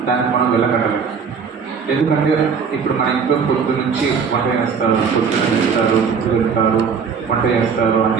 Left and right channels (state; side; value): quieter; left; 6.1 dB